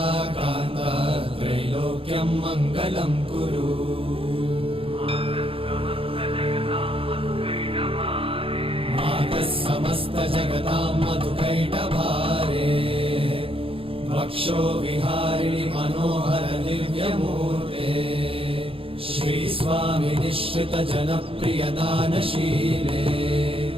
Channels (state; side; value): late; left; 0.27 ms